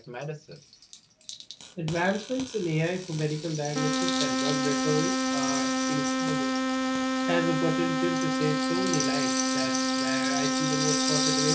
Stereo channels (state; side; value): identical; both; correlation 1.00